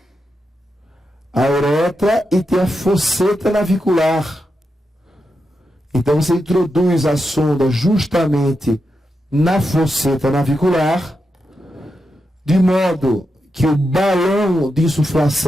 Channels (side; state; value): both; normal; correlation 0.86